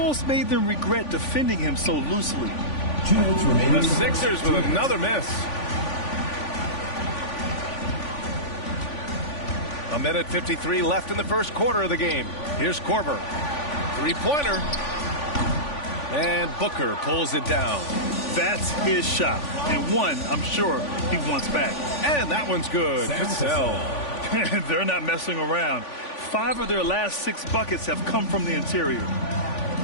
made them regret defending him so loosely. The Sixers with another miss. A minute 53 left in the first quarter of the game. Here's Korver. Three-pointer. And Booker pulls it down. That's his shot. And one, I'm sure, he wants back. And that one's good. Cassell. They're not messing around. 5 of their last 6 buckets have come from the interior.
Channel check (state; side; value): late; right; 3.5 ms